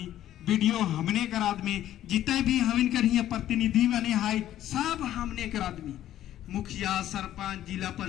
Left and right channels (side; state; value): right; quieter; 12.5 dB